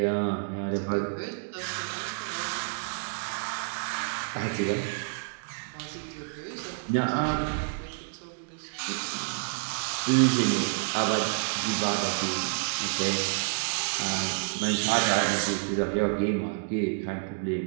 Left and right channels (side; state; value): left; silent; digital silence